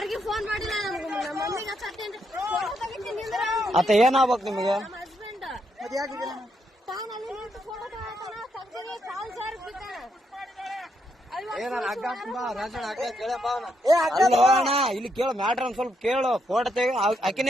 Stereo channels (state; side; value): normal; both; correlation 0.78